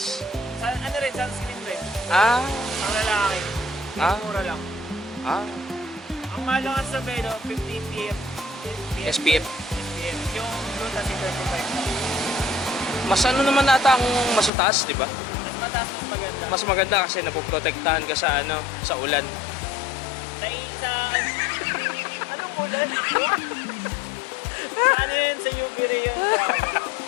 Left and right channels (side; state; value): right; drops out; at 14.5 s